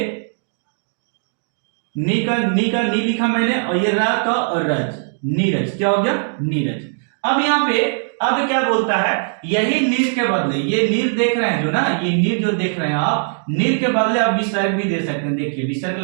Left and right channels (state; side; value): silent; left; digital silence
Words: नी का नी लिखा मैंने और ये रा का और रज, नीरज। क्या हो गया? नीरज। अब यहाँ पे अब क्या बोलता है, यही नीर के बदले, ये नीर देख रहे हैं जो ना, ये नीर जो देख रहे हैं आप, नीर के बदले आप विसर्ग भी दे सकते हैं। देखिए विसर्ग